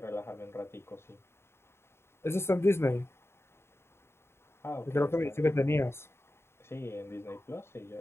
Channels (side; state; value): right; late; 0.12 ms